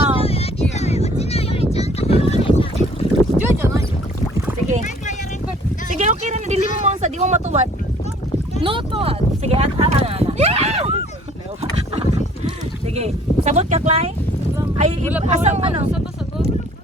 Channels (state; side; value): normal; both; correlation 0.55